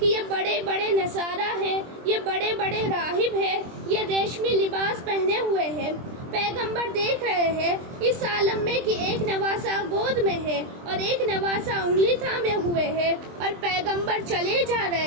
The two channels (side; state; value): left; late; 23 ms